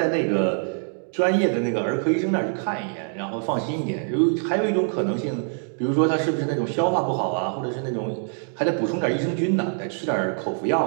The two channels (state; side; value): silent; left; 60 dB below the other